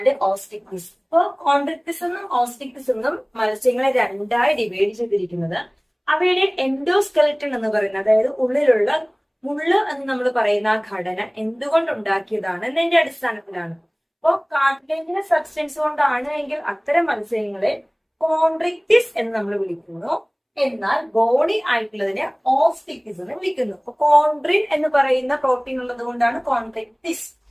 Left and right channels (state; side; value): identical; both; correlation 1.00